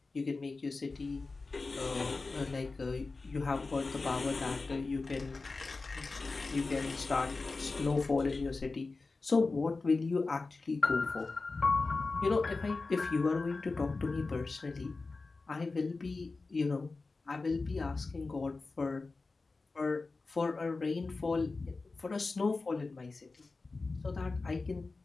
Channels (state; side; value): quieter; right; 3.8 dB